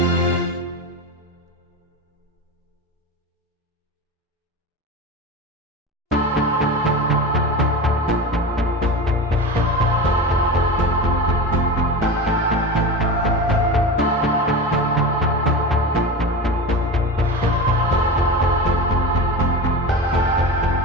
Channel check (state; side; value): normal; both; correlation 0.27